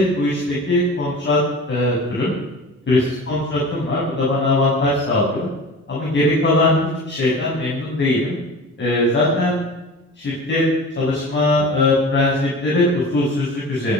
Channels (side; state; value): both; normal; correlation 0.36